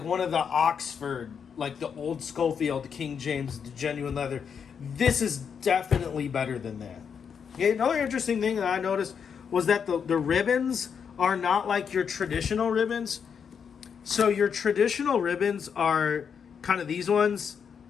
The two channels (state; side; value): quieter; right; 6.9 dB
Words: one of the Oxford, like the old Scofield King James genuine leather, this is definitely better than that. Okay, another interesting thing that I noticed was that the ribbons are not like your traditional ribbons. So your traditional ribbons are kind of these ones,